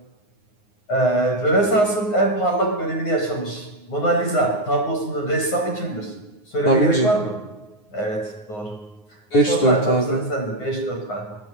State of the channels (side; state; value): right; late; 9.6 ms